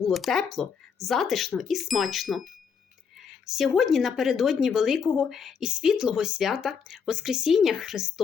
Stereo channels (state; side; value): quieter; right; 6.4 dB